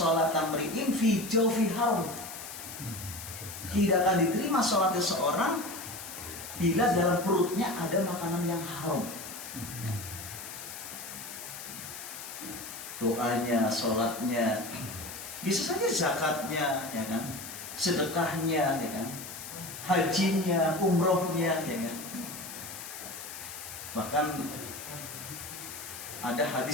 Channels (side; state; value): left; noise; hiss, 10 dB below the sound